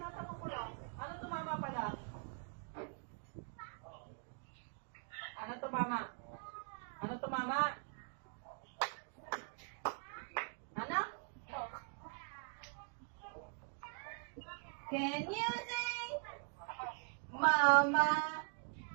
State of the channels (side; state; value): left; quieter; 39.6 dB